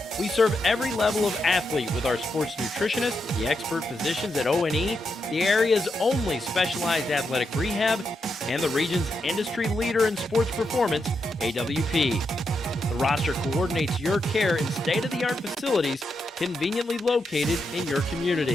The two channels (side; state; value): both; normal; correlation 0.84